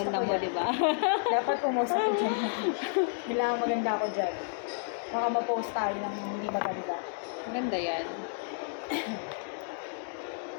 ko mo, yan. di ba? Dapat pumost ako dyan. Kailangan maganda ako dyan. Baka ma-post tayo ng hindi maganda. Maganda yan.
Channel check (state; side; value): silent; right; digital silence